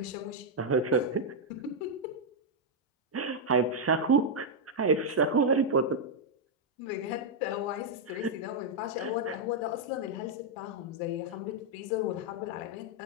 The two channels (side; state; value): both; normal; correlation -0.03